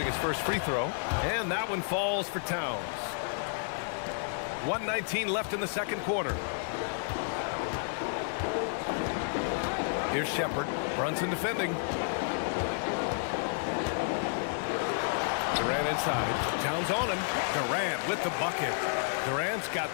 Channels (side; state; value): right; silent; 57 dB below the other